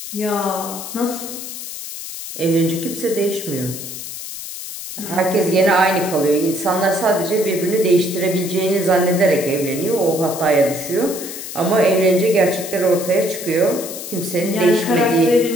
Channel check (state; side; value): noise; left; hiss, 9 dB below the sound